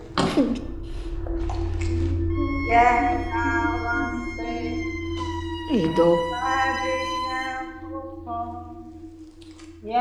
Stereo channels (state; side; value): identical; both; correlation 1.00